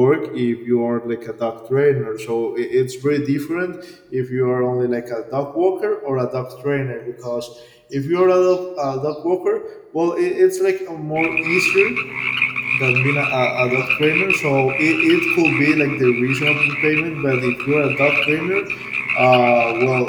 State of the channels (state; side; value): identical; both; correlation 1.00